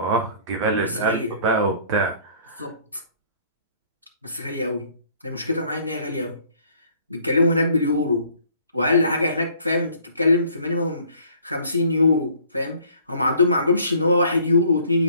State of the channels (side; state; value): both; inverted; correlation -0.58